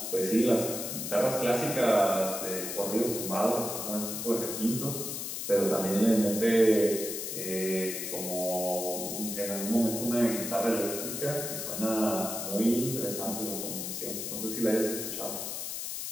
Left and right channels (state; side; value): noise; left; hiss, 5 dB below the sound